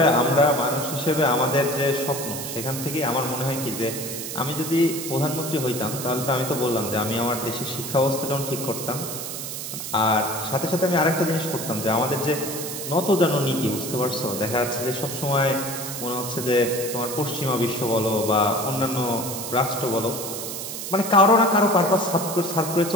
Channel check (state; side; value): noise; right; hiss, 7 dB below the sound